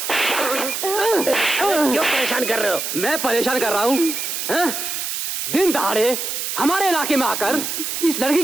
क्यों परेशान कर रहे हो? मैं परेशान कर रहा हूँ? दिन दहाड़े हमारे इलाके में आकर इस लड़की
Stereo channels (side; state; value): right; noise; hiss, 3 dB below the sound